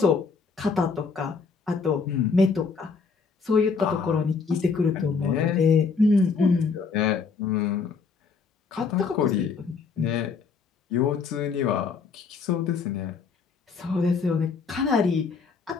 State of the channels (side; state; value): right; quieter; 5.2 dB